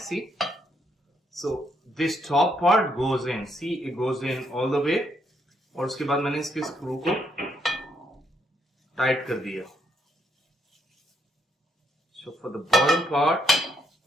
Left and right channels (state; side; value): normal; both; correlation 0.74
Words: So this top part goes in. See, it goes in all the way. और उसके बाद मैंने इसके screw को tight कर दिया. So for the bottom part,